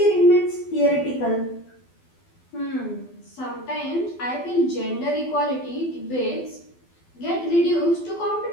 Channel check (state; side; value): late; right; 12 ms